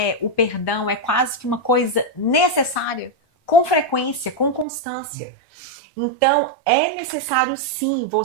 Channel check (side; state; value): left; drops out; at 4.7 s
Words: o perdão é quase que uma coisa necessária, com frequência, com constância. Então, é necessário sim